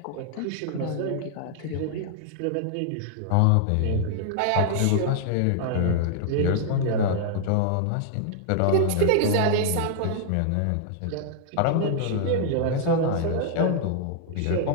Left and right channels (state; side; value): different; both; correlation -0.01